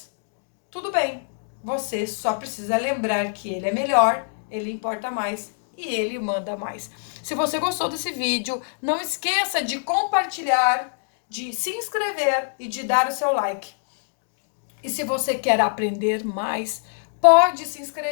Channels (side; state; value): right; silent; digital silence